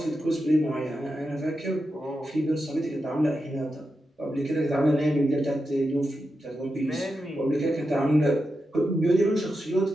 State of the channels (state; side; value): normal; both; correlation 0.89